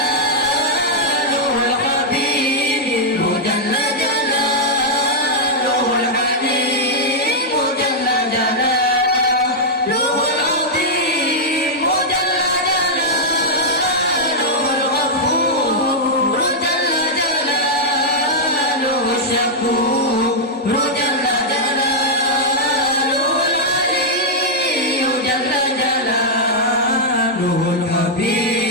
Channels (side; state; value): both; normal; correlation -0.05